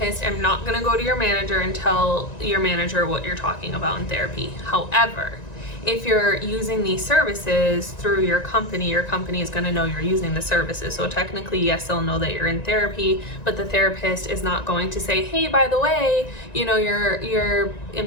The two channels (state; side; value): late; right; 1.9 ms